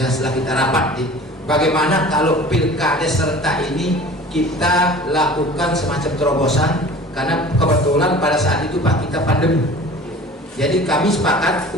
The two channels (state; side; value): normal; both; correlation 0.43